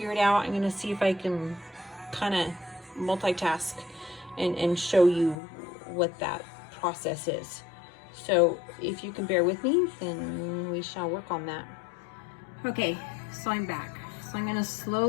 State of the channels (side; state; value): right; drops out; at 5.4 s